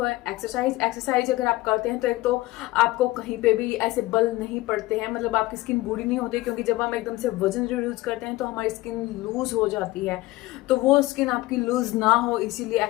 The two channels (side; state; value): right; quieter; 18.7 dB